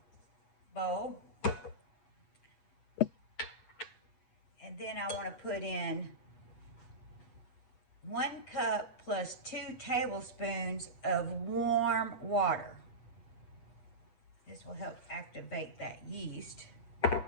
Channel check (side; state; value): right; late; 8.0 ms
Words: bowl. And then I want to put in 1 cup plus 2 tablespoons of warm water. This will help activate that yeast. And